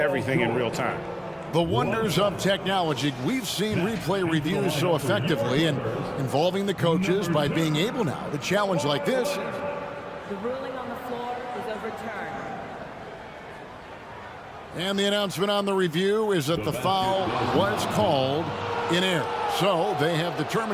in real time. The wonders of technology. We've seen replay reviews so effectively and involving the coaches by being able now to challenge like this. The ruling on the floor is overturned. And the announcement on the review is that the foul was called in error. So they have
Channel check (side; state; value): both; identical; correlation 1.00